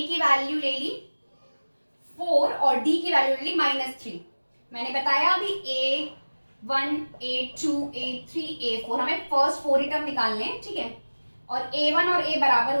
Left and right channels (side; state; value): both; inverted; correlation -1.00